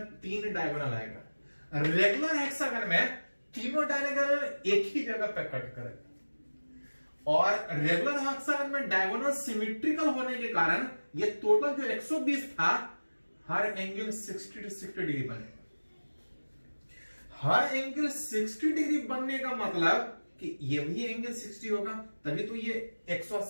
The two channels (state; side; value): inverted; both; correlation -1.00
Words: 3 डायगोनल आएगा। रेगुलर हेक्सागन में तीनों डायगोनल एक ही जगह पे कट करेगा और रेगुलर हेक्सागन में डायगोनल सिमेट्रिकल होने के कारण ये टोटल जो 120 था, हर एंगल 60 to 60 डिग्री बनेगा। हर एंगल 60 डिग्री बनने का मतलब कि ये भी एंगल 60 होगा, तभी तो ये